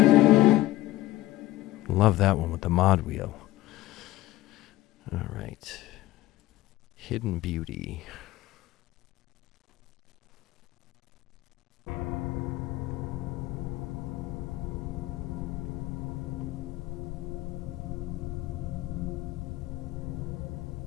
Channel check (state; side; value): quieter; right; 16.6 dB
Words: Love that one with the mod wheel. All right. Hidden Beauty.